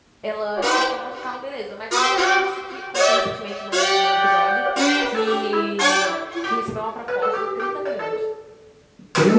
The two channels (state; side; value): identical; both; correlation 1.00